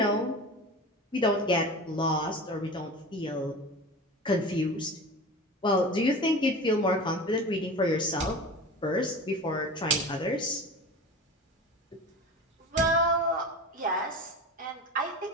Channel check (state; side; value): normal; both; correlation 0.32